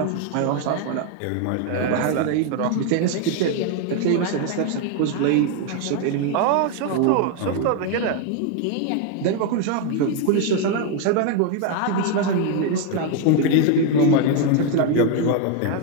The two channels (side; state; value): both; different; correlation 0.01